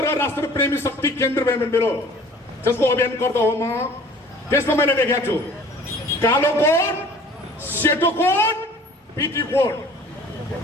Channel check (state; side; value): normal; both; correlation 0.49